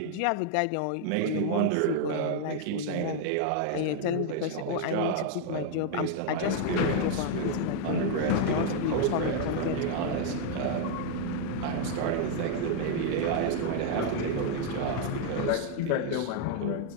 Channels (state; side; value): different; both; correlation 0.00